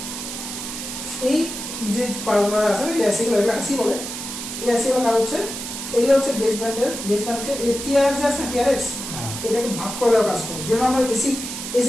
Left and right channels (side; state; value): right; noise; hiss, 7 dB below the sound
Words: এই যে পারগুলো আছে এই আইসিগুলো, এগুলো আইসি বলে। এই আইসিগুলো কাজ হচ্ছে, এগুলো হচ্ছে বেসব্যান্ডকে এই টিআরএক্স আছে না, টিআরএক্স এটাকে ভাগ করে দেওয়ার কাজ করে। যেমন আমরা